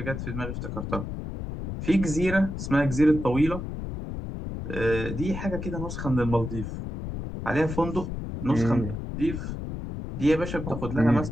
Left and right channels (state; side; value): noise; left; rumble, 6 dB below the sound